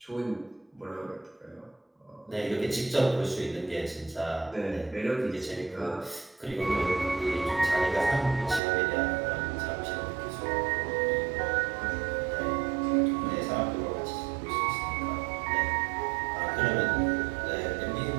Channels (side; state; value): left; drops out; at 8.6 s